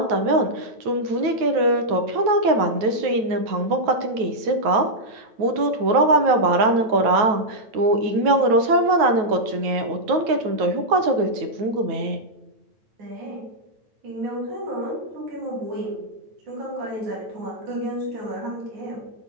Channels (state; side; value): late; left; 9.4 ms